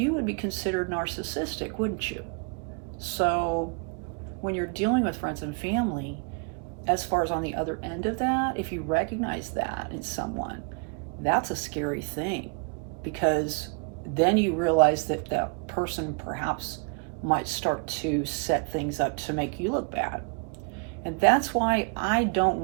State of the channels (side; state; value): left; quieter; 36.1 dB